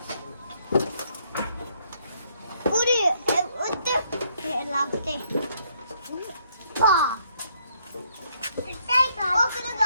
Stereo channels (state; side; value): inverted; both; correlation -0.70